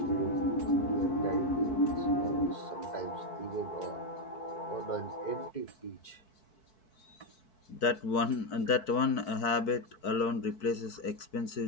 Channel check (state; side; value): late; right; 4.6 ms